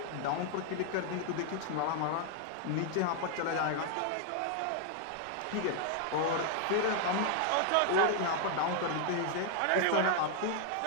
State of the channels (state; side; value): different; both; correlation 0.00